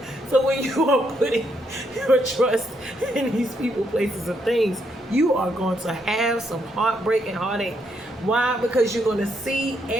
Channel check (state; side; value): normal; both; correlation 0.76